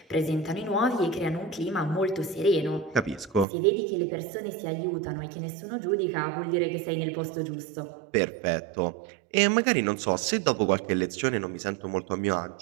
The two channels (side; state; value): left; drops out; at 3.5 s